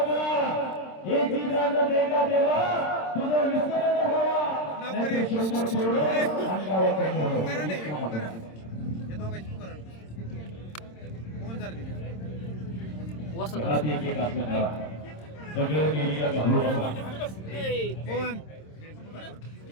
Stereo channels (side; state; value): right; late; 26 ms